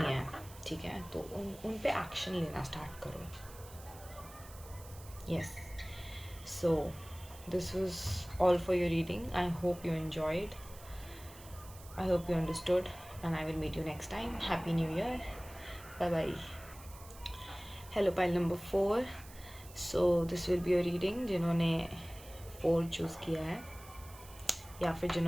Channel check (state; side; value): noise; right; hiss, 19 dB below the sound